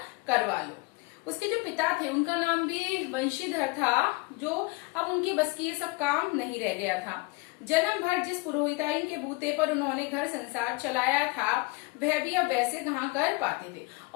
करवा लूं। उसके जो पिता थे उनका नाम भी वंशीधर था, जो अब उनकी बस की ये सब काम नहीं रह गया था। जन्म भर जिस पुरोहिताइन के बूते पर उन्होंने घर संसार चलाया था वह भी अब वैसे कहाँ कर पाते थे।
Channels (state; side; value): quieter; right; 26.0 dB